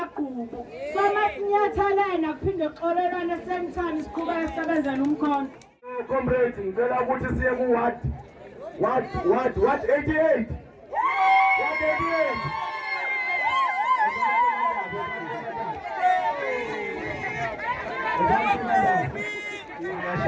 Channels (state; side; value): identical; both; correlation 1.00